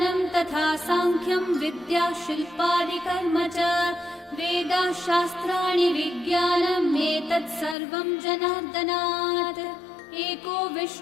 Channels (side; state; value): right; drops out; at 7.8 s